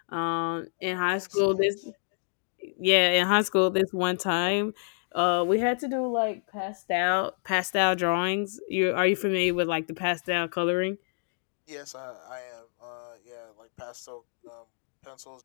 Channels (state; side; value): silent; right; digital silence